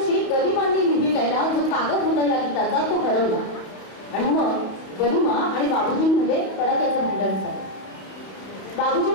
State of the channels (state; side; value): late; right; 31 ms